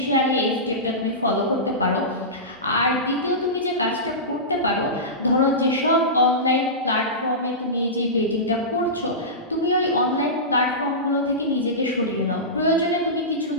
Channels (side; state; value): both; normal; correlation -0.18